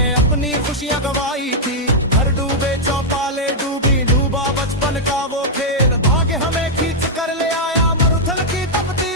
अपनी खुशियां गवाई थी। घर डूबे चौपाले डूबी, डूबा बचपन का वो खेल। भाग्य हमें खींच कर ले आया मरुथल की तपती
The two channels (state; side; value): normal; both; correlation -0.04